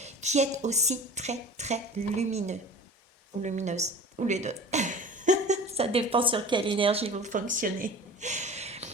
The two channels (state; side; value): normal; both; correlation 0.40